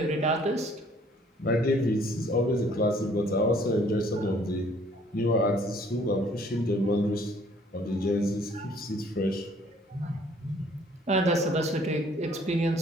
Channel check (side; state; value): both; normal; correlation 0.59